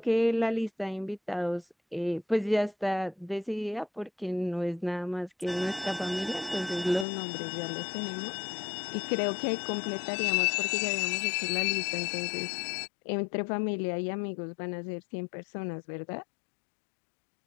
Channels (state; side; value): drops out; right; at 7.1 s